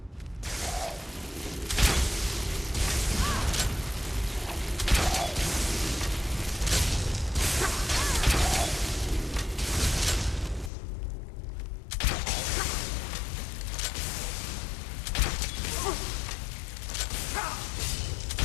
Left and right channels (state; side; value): drops out; right; at 10.7 s